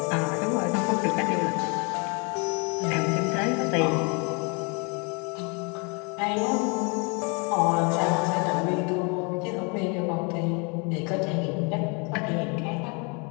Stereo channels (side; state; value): right; quieter; 33.0 dB